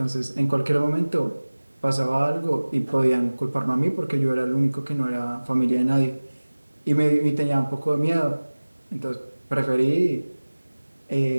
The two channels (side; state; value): both; inverted; correlation -1.00